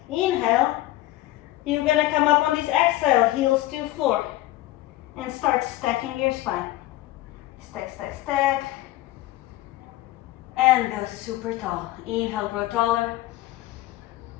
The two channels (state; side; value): quieter; right; 16.2 dB